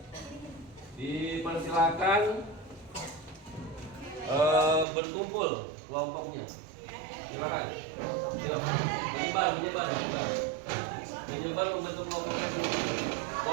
Dipersilakan berkumpul kelompoknya. Silakan. Yuk, menyebar membentuk kelompoknya sini.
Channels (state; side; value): drops out; left; at 4.9 s